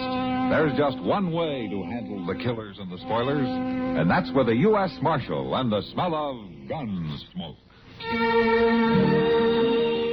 there's just one way to handle the killers and the spoilers, and that's with a U.S. Marshal and the smell of Gunsmoke.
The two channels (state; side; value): identical; both; correlation 1.00